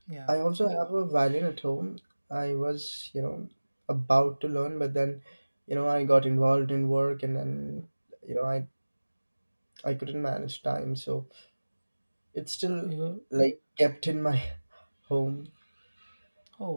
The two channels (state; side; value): inverted; both; correlation -1.00